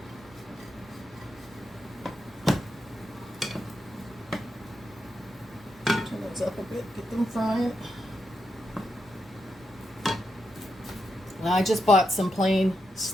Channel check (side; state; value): both; normal; correlation 0.84